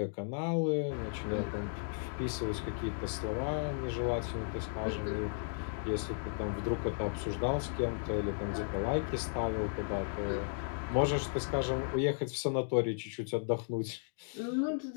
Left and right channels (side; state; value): right; silent; digital silence